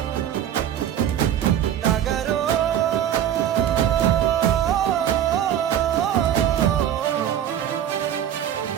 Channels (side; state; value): left; quieter; 10.4 dB